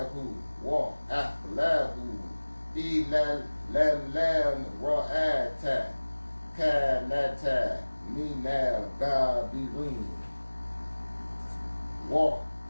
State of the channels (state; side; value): inverted; both; correlation -1.00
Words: Wa Ahlahu Ila Lam Ra'ata Kanata Minal Gabirin Wa